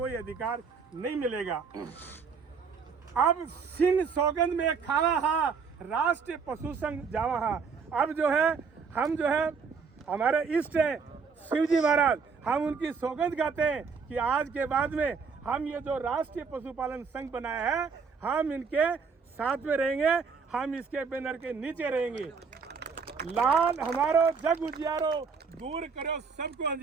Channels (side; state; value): left; quieter; 5.5 dB